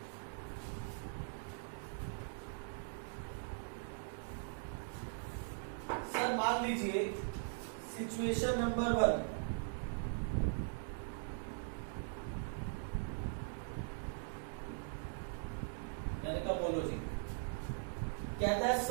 सर मान लीजिए सिचुएशन नंबर 1, मैंने कहा बोलो जी। कहता है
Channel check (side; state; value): left; silent; digital silence